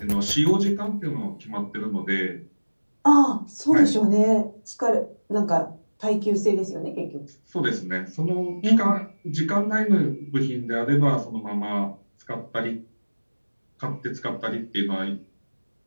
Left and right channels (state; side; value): inverted; both; correlation -1.00